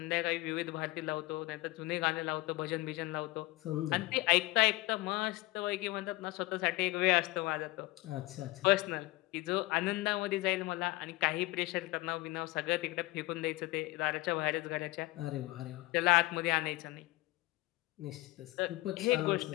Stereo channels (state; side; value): quieter; right; 20.4 dB